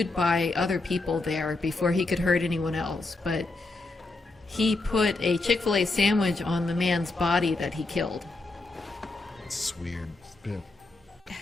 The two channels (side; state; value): right; quieter; 3.2 dB